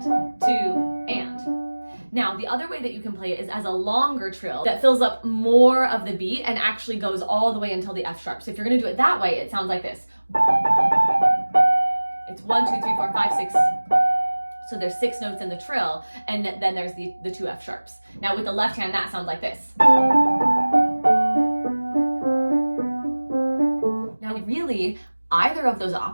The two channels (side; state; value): both; inverted; correlation -1.00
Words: 2 and. Now, the other way that you can play it is as a longer trill that fills up more of the beat and actually goes all the way until the F sharp. So if you're going to do it that way, it sounds like this. It's 1, 2, 3, 4, 5, 6. So there's 6 notes in the trill, and then there's the 2 F sharps. Now with the left hand, that sounds like this. Now really, either of those